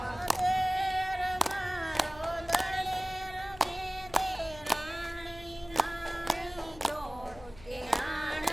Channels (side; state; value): left; noise; hum, 19 dB below the sound